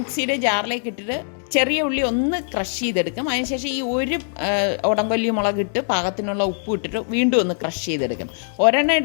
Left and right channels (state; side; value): silent; right; digital silence